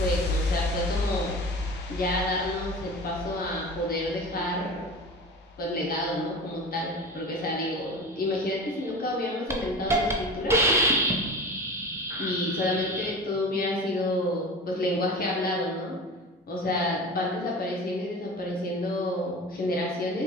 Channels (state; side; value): normal; both; correlation 0.34